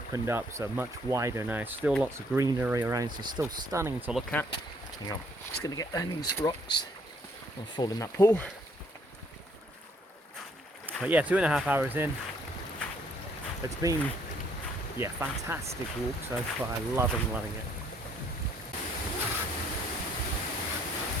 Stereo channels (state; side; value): normal; both; correlation 0.65